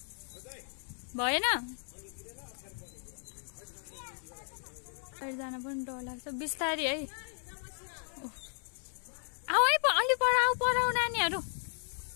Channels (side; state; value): right; silent; 55 dB below the other